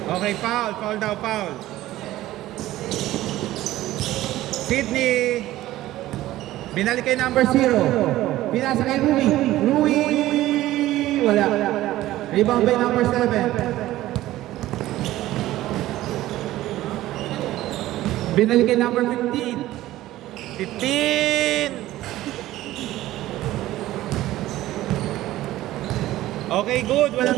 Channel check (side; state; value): left; quieter; 15.5 dB